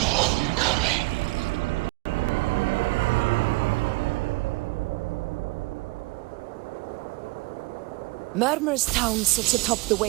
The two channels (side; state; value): left; quieter; 23.9 dB